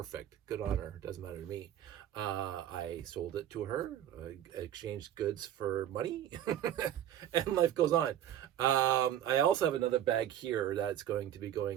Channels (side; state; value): left; quieter; 11.2 dB